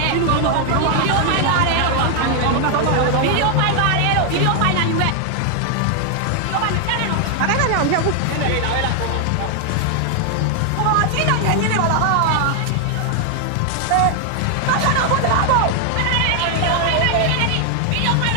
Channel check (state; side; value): different; both; correlation 0.00